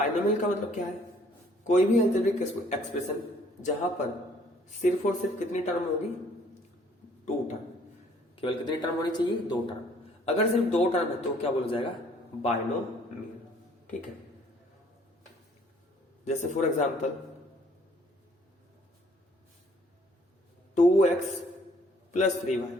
का मतलब क्या है, कोई भी एल्जेब्रिक एक्सप्रेशन जहां पर सिर्फ और सिर्फ कितनी टर्म होगी, 2 टर्म। केवल कितनी टर्म होनी चाहिए, 2 टर्म। अगर सिर्फ 2 टर्म है तो क्या बोला जाएगा, बाइनोमियल। ठीक है, जैसे for example 2x plus 3y।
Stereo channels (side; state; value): both; normal; correlation 0.60